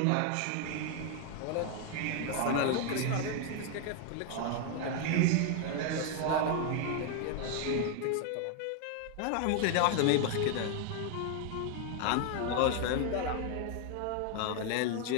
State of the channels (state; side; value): different; both; correlation 0.00